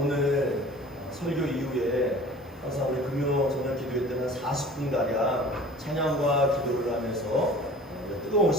오늘 설교 이후에 항상 우리 금요 저녁 기도회 때는 40분가량 찬양과 기도를 하면서 뜨거운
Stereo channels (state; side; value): normal; both; correlation 0.44